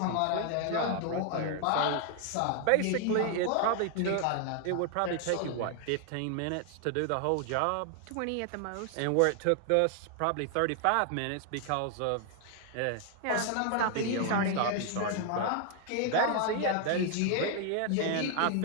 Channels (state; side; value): different; both; correlation 0.00